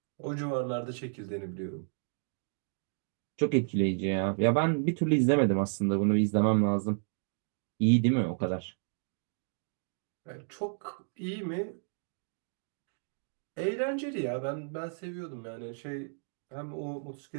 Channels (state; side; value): silent; left; 56 dB below the other